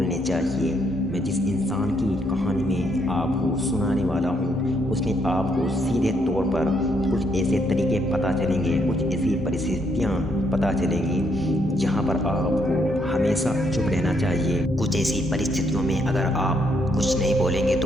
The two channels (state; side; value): normal; both; correlation 0.73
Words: चाहिए। मैं जिस इंसान की कहानी में आपको सुनाने वाला हूँ उसमें आपको सीधे तौर पर कुछ ऐसे तरीके पता चलेंगे, कुछ ऐसी परिस्थितियाँ पता चलेंगी जहाँ पर आपको हमेशा चुप रहना चाहिए। कुछ ऐसी परिस्थितियों में अगर आप कुछ नहीं बोलेंगे